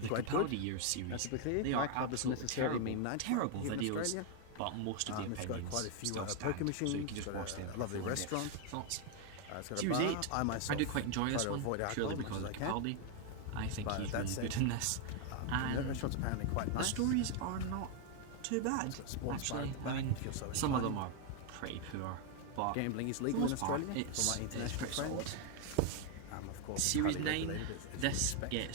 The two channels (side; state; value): both; different; correlation 0.01